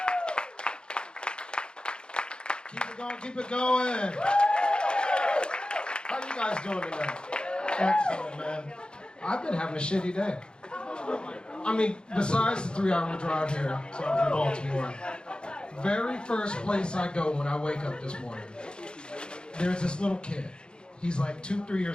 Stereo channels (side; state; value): right; late; 0.050 ms